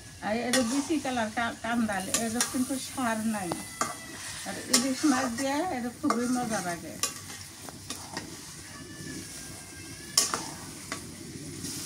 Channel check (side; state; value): both; identical; correlation 1.00